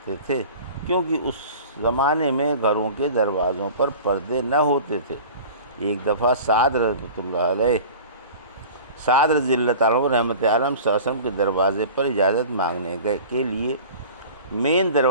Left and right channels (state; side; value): inverted; both; correlation -0.40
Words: تھے، کیونکہ اس زمانے میں گھروں کے دروازوں پر پردے نہ ہوتے تھے۔ ایک دفعہ سعد رضی اللہ عنہ رحمت عالم صلی اللہ علیہ وسلم کے دروازے پر اجازت مانگنے کے لیے مین